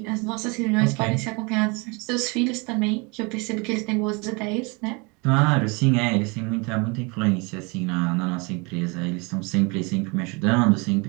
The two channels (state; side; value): quieter; left; 29.5 dB